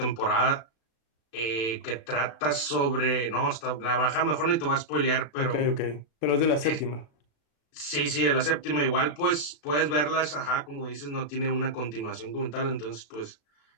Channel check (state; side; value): late; right; 36 ms